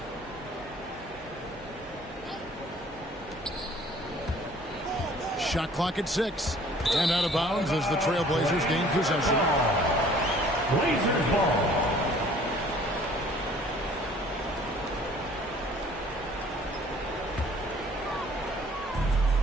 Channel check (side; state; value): both; normal; correlation 0.54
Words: Shot clock at 6. And out of bounds as the Trailblazers gain possession. Blazers ball.